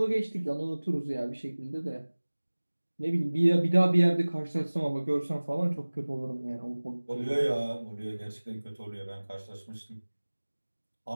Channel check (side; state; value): both; inverted; correlation -1.00